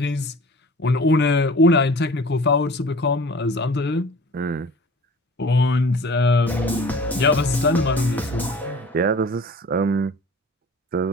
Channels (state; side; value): normal; both; correlation 0.44